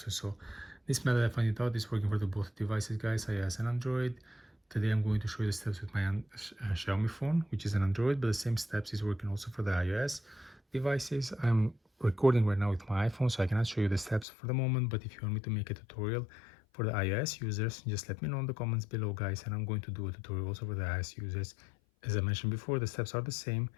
So this method I found it out is working for the both devices, guys, iOS and Android. Today I'm going to show you the steps with my Xiaomi phone, which is an Android, but the same steps is working also for the iOS devices. I'm recording right now with my iPhone, so I cannot show you the steps for the moment, but if you want me to make a tutorial for the iOS users, just let me know in the comments below, guys, and I'm going to do a tutorial also for the iOS users. As I mentioned before, the steps are the same,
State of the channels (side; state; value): right; drops out; at 14.2 s